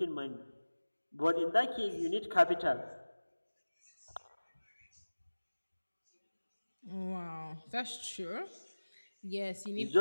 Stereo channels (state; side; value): inverted; both; correlation -1.00